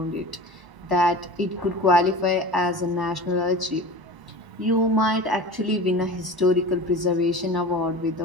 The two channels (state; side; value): late; left; 1.0 ms